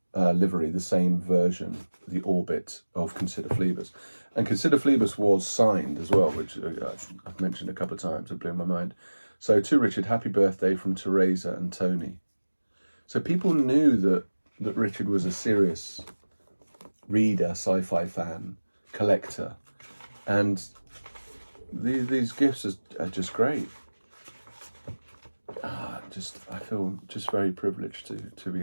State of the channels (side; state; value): both; inverted; correlation -1.00